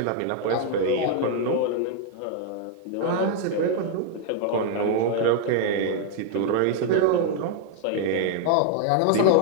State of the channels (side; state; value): both; different; correlation 0.00